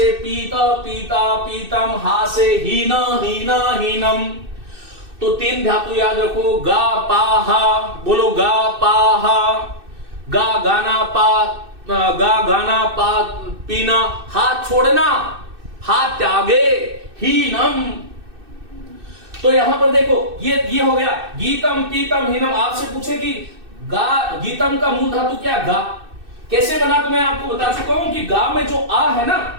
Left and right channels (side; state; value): left; late; 2.6 ms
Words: पीता, पीता, पीतम, हा से हीना, हीना, हीनम। तो तीन धातु याद रखो, गा पा हा, बोलो गा पा हा, गा गाना पा, गा गाना पा पीना, हाथ छोड़ना, हाथ त्यागे, हीनम। तो यहां पर देखो ये हो गया, गीतम, पीतम, हीनम। आपसे पूछे कि गा, गीतम का मूल धातु क्या, गा कैसे बना, तो मैं आपको बता चुका हूं कि गा में जो आ है